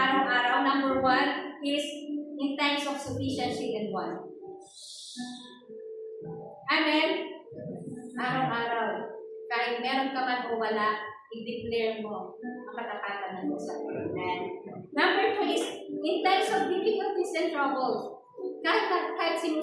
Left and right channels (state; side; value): identical; both; correlation 1.00